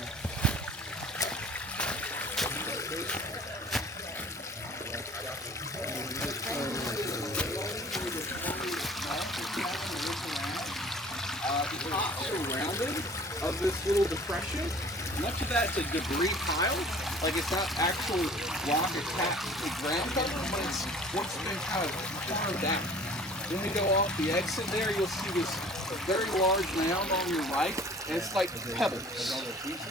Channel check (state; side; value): normal; both; correlation 0.48